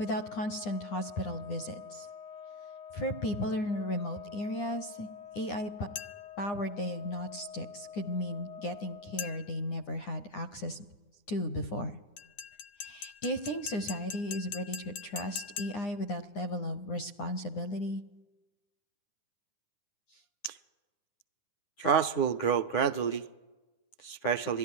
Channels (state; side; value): late; right; 9.8 ms